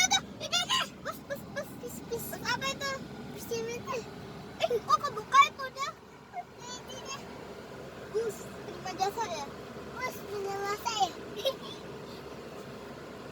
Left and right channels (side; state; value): both; identical; correlation 1.00